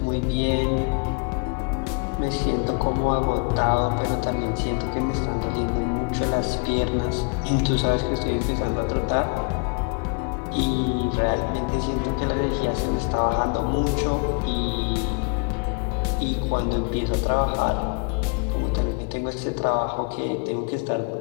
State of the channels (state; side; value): quieter; right; 33.9 dB